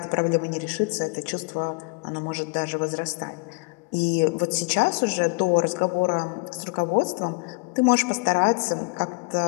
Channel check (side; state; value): right; quieter; 32.0 dB